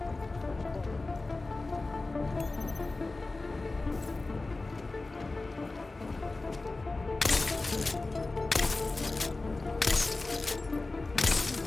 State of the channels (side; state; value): right; quieter; 3.3 dB